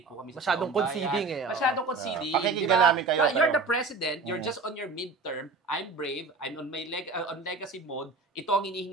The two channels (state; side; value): quieter; left; 4.0 dB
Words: po kami sa masyadong conceding Masyadong conceding. Pakikinggan namin kayo. You're the president, you're just on your midterm, I'm brave, I'm on my on legacy mode, ito ang